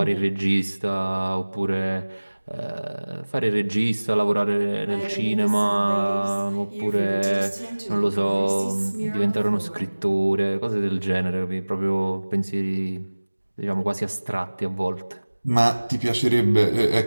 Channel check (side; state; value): both; inverted; correlation -1.00